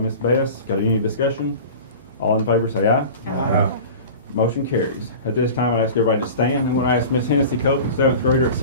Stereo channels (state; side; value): inverted; both; correlation -0.36